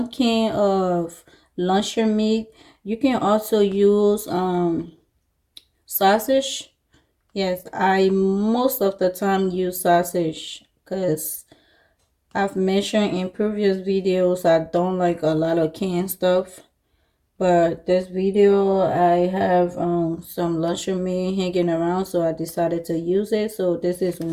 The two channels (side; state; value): both; identical; correlation 1.00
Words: can of luncheon meat. You can also use sausage. Yes, I most of the time use sausage because I've mentioned in previous videos I don't like a lot of canned stuff. But this video I have some luncheon meat hanging around, so I decided to use it. So this is